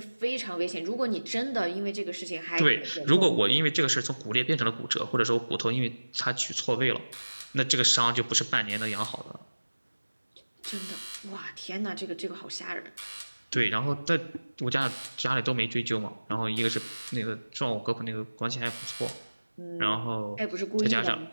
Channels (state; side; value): inverted; both; correlation -1.00